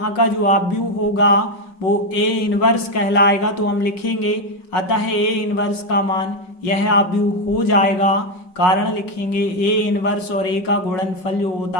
का जो आव्यूह होगा वो A इनवर्स कहलाएगा। तो हम लिखेंगे अतः A इनवर्स का मान यह आव्यूह हो जाएगा। कारण लिखेंगे A इनवर्स और A का गुणनफल जो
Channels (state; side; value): late; right; 5.4 ms